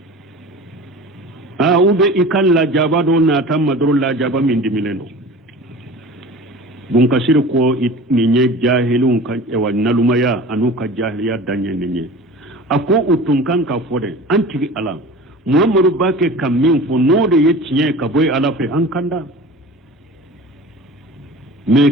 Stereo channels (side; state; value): both; normal; correlation 0.38